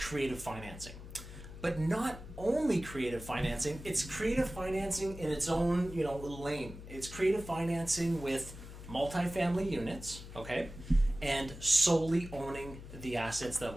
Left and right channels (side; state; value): left; noise; hum, 13 dB below the sound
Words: financing. But not only creative financing, it's creative financing in its own, lane. It's creative financing with multifamily units, okay? And solely owning the assets that